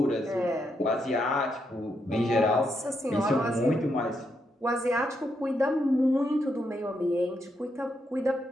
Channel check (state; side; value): normal; both; correlation 0.80